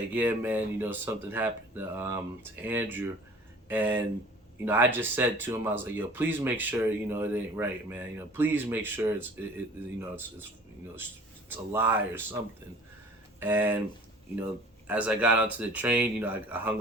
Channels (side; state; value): both; normal; correlation 0.47